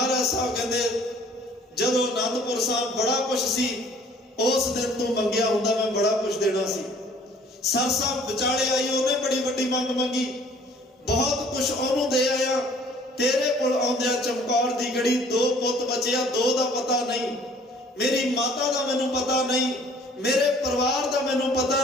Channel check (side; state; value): both; normal; correlation 0.55